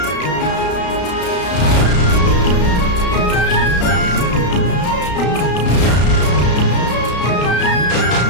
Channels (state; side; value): late; right; 33 ms